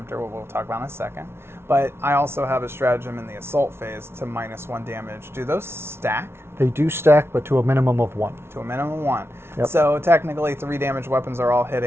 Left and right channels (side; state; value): left; late; 0.12 ms